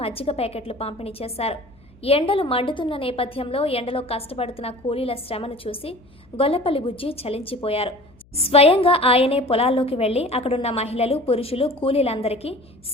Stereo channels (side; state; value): left; noise; hum, 29 dB below the sound